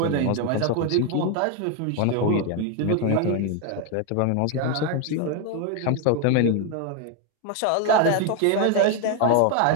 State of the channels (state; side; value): different; both; correlation 0.01